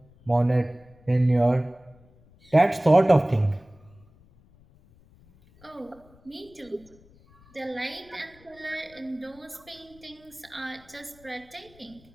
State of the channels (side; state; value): left; noise; rumble, 28 dB below the sound